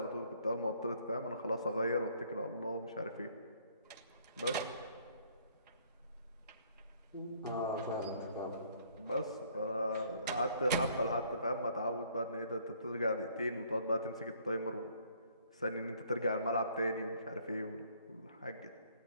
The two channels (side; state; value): both; inverted; correlation -0.62